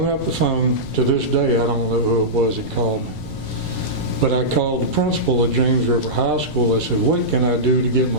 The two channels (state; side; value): noise; right; rumble, 16 dB below the sound